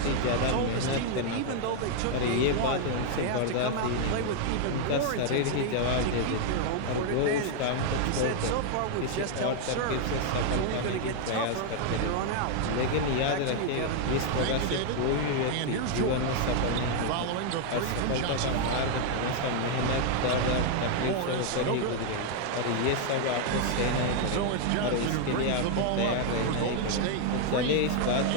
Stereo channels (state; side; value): different; both; correlation 0.00